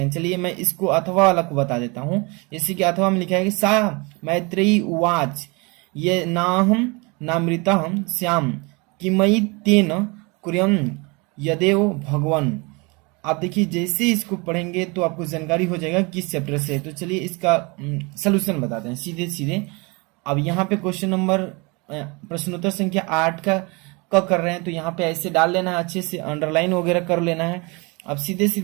चलिए मैं इसको अथवा वाला को बता देता हूँ। जैसे कि अथवा में लिखा है कि सा मैत्रेयी उवाच ये नाहम नामृतहम श्याम किमयि तेन कुर्यम यदेव भगवान। आप देखिए जैसे इसको पढ़ेंगे तो आपको जानकारी हो जाएगा किस चैप्टर से है। तो चलिए इसका सलूशन बताते हैं सीधे सीधे। अब यहाँ पे क्वेश्चन नंबर प्रश्नोत्तर संख्या 8 का कर रहे हैं, तो यहाँ पे ऐसे डाल लेना है, अच्छे से अंडरलाइन वगैरह कर लेना है। अब सीधे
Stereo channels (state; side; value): quieter; left; 28.3 dB